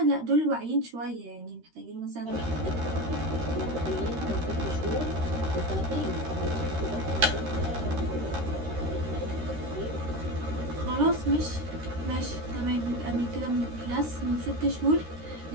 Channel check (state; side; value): late; left; 13 ms